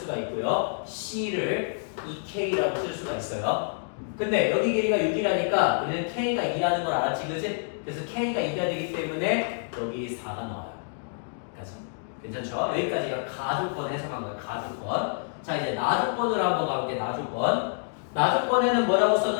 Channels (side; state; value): right; silent; digital silence